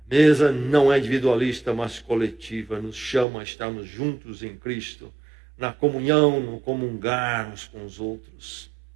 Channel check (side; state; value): left; drops out; at 3.2 s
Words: A mesa não é individualista, mas coletiva. Nos chama a estarmos juntos em Cristo, na comunhão, no comungar uns com os outros,